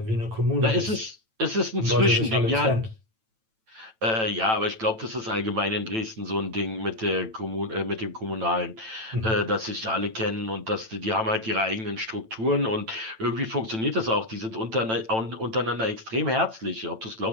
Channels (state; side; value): late; left; 9.0 ms